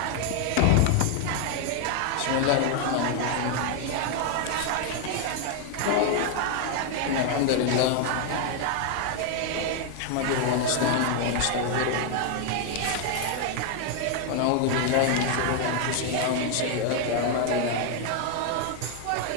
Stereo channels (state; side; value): different; both; correlation 0.00